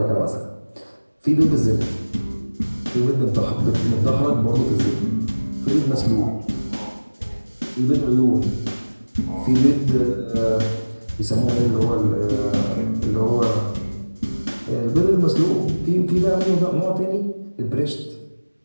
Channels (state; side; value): inverted; both; correlation -1.00